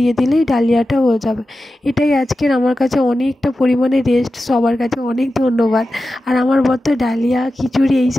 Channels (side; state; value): both; normal; correlation 0.93